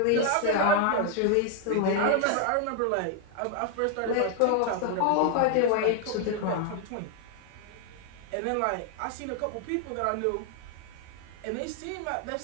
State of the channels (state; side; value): different; both; correlation 0.00